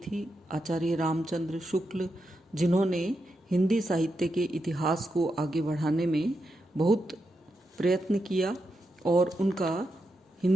आचार्य रामचंद्र शुक्ल, जिन्होंने हिंदी साहित्य के इतिहास को आगे बढ़ाने में बहुत प्रयत्न किया और उनका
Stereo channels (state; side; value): normal; both; correlation 0.85